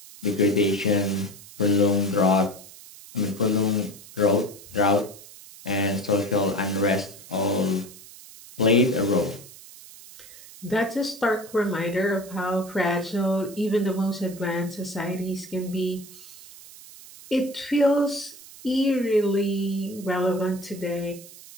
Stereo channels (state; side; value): noise; right; hiss, 18 dB below the sound